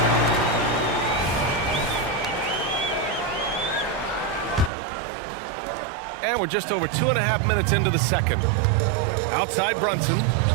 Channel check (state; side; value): drops out; left; at 4.7 s